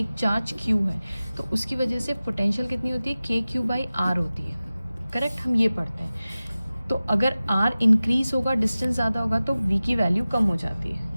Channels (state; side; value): inverted; both; correlation -0.96